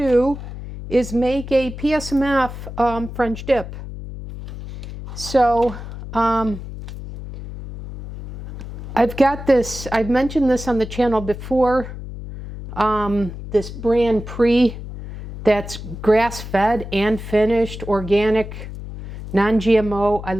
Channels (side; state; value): left; noise; hum, 10 dB below the sound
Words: is make a PSMF French dip. So I've got this, I've mentioned this on the channel before, this brand Pre that's grass-fed and finished, organic, non-GMO. I